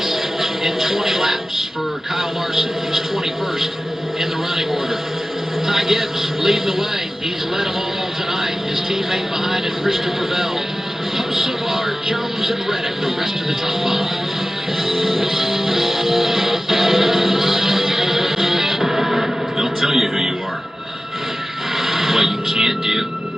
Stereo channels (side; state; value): both; normal; correlation 0.95